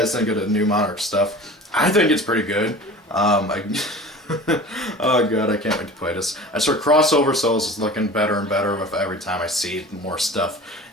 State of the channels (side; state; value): both; normal; correlation 0.39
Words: think of the new Monarch stuff? I think it's pretty good. Oh god, I can't wait to play this. I swear Crossover Souls is looking better and better with every time I see more stuff.